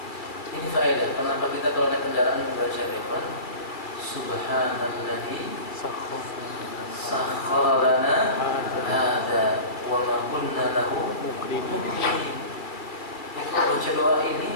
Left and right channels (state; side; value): late; right; 2.3 ms